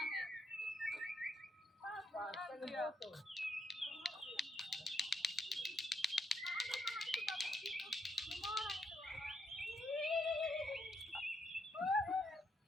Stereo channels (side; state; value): both; normal; correlation 0.76